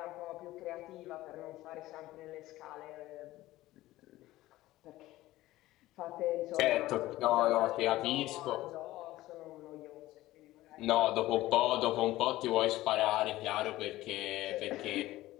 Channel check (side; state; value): right; quieter; 16.6 dB